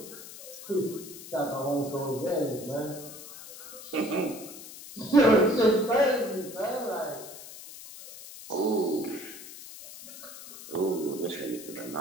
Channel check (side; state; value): left; noise; hiss, 14 dB below the sound